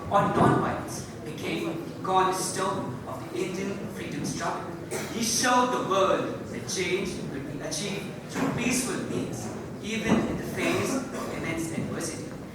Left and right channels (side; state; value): both; identical; correlation 1.00